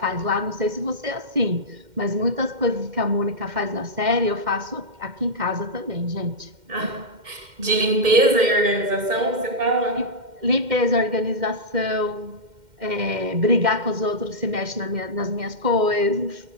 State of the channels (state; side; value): late; left; 2.1 ms